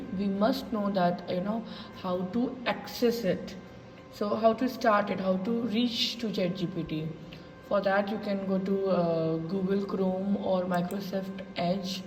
we must know that how to access it. So how to start it, how to reach to ChatGPT. For that, you can go to Google Chrome or Microsoft Edge,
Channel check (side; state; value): both; identical; correlation 1.00